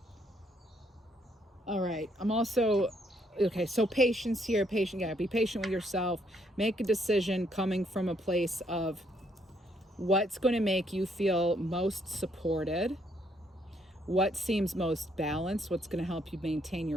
All right, I'm also, okay, so patience here, be patient with yourself. Make a decision coming from a place of what's going to make you feel most supported, what seems most balanced, what's going to help you maintain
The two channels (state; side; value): normal; both; correlation 0.71